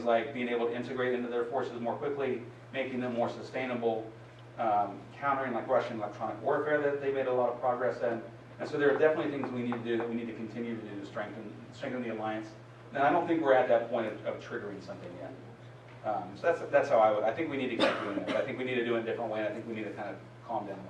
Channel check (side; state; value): both; identical; correlation 1.00